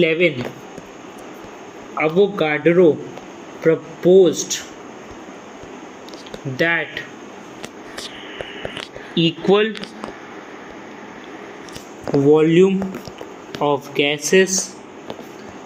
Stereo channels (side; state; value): both; identical; correlation 1.00